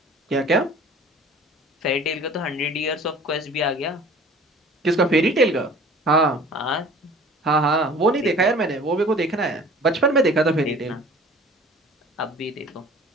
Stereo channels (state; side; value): normal; both; correlation 0.46